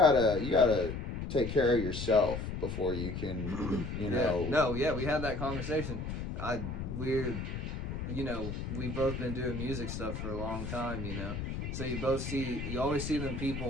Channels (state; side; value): noise; left; rumble, 5 dB below the sound